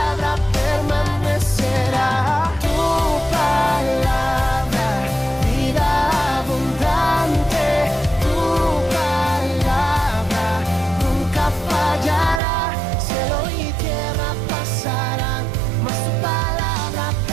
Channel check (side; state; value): left; drops out; at 12.4 s